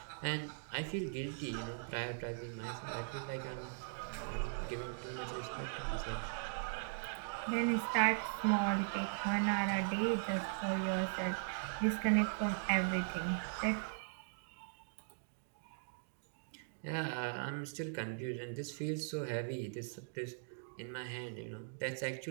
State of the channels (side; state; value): left; silent; digital silence